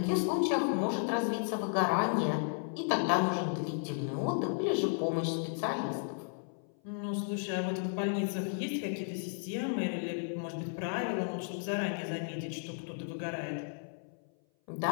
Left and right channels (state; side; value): silent; right; 55 dB below the other